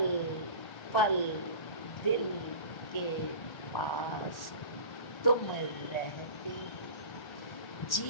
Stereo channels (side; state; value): right; late; 1.1 ms